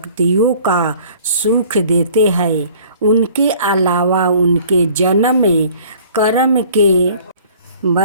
का सुख देते हैं। उनके अलावा उनके जन्म कर्म के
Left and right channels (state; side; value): inverted; both; correlation -0.52